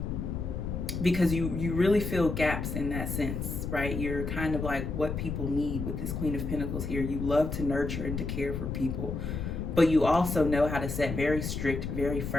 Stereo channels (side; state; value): left; noise; rumble, 4 dB below the sound